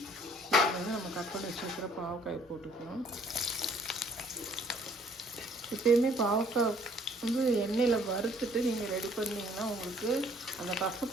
இதில் வந்து நம்ம கட் பண்ணி வச்சுருக்கிற பாவக்காயை போட்டுக்கலாம். எப்பயுமே பாவக்காய் வந்து எண்ணெயில் வறுத்துட்டு நீங்கள் ரெடி பண்ணிங்கன்னா உங்களுக்கு அந்த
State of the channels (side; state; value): both; normal; correlation 0.60